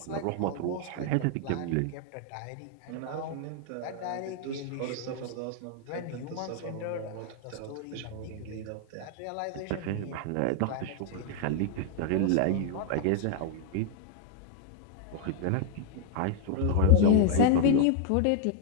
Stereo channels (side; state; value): both; different; correlation 0.00